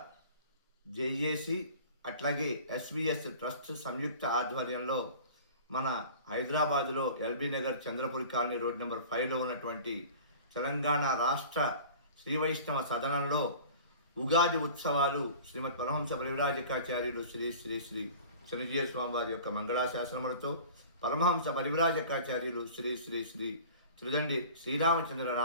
జేఏసీ అట్లాగే ఎస్విఎస్ ట్రస్ట్ సంయుక్త ఆధ్వర్యంలో మన హైదరాబాదులో LB Nagar Chandrapuri colony road number 5లో ఉన్నటువంటి తెలంగాణ రాష్ట్ర శ్రీ వైష్ణవ సదనంలో ఉగాది ఉత్సవాలు శ్రీమద్ పరమహంస పరివ్రాజకాచార్యులు శ్రీ శ్రీ శ్రీ చిన్నజీయ స్వామి వారి యొక్క మంగళాశాసనములతో పరమహంస పరివ్రాజకాచార్యులు శ్రీ శ్రీ శ్రీ త్రిదండి శ్రీరామచంద్ర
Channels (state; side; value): inverted; both; correlation -0.42